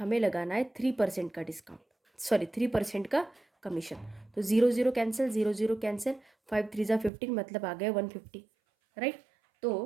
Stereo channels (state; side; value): drops out; left; at 7.1 s